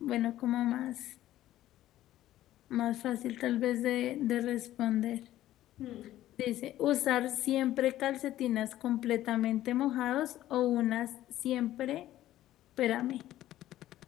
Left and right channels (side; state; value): right; quieter; 13.9 dB